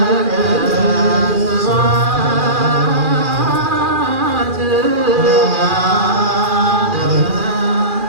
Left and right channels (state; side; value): late; left; 2.4 ms